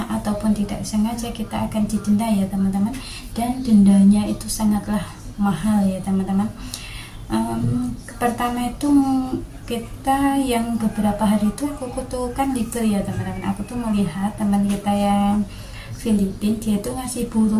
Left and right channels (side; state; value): both; identical; correlation 1.00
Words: ataupun tidak sengaja, kita akan didenda ya teman-teman. Dan dendanya itu sangatlah mahal ya teman-teman. Pertama itu kita yang beberapa hari itu aku tuh kan libur ya teman-teman, aku tuh melihat teman kita yang Filipina, dia tuh ngasih